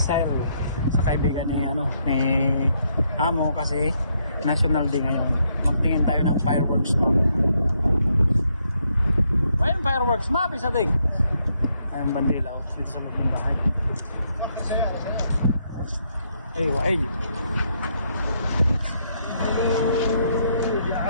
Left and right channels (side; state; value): both; inverted; correlation -0.75